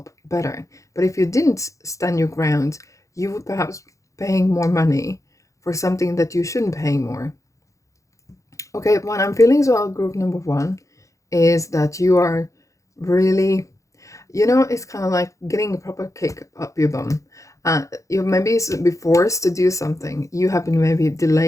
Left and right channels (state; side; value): late; right; 0.15 ms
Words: better. But if you didn't stand your ground, you would perhaps paying more money for something that you shouldn't pay more. Okay, what I'm feeling as well, group number one, is that you are really, you know, it's kind of like getting a proper kick up your bum. You maybe be forced to do something. You have been maybe